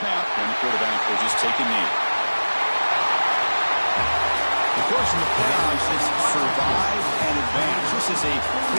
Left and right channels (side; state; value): both; inverted; correlation -1.00